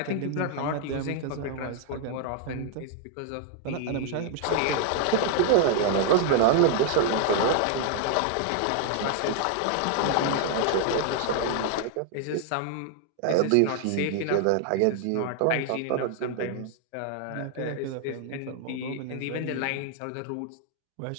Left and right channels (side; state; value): both; different; correlation 0.00